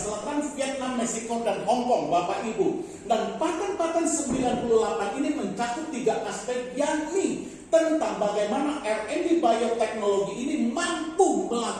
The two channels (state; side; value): identical; both; correlation 1.00